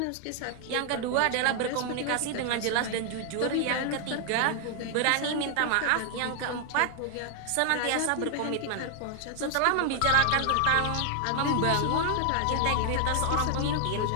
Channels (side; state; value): both; different; correlation 0.00